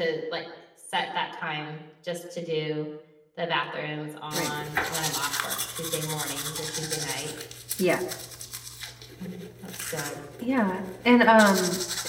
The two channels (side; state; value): both; identical; correlation 1.00